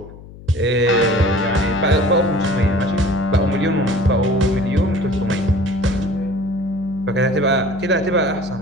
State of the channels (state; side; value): noise; left; hum, 18 dB below the sound